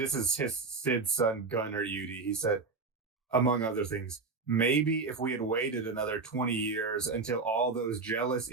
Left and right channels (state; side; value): quieter; left; 4.2 dB